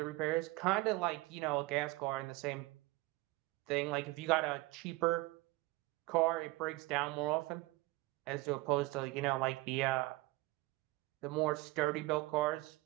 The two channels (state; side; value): quieter; left; 21.5 dB